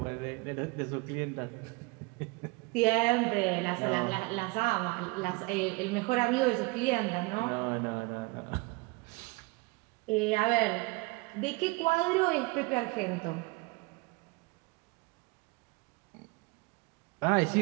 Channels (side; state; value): left; quieter; 25.9 dB